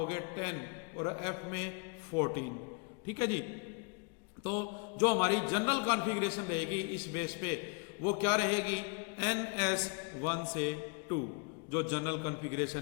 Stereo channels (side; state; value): right; quieter; 34.0 dB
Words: 10 और एफ में 14। ठीक है जी। तो जो हमारी जनरल कॉन्फ़िगरेशन रहेगी इस बेस पे वो क्या रहेगी, NS1 से 2 जो जनरल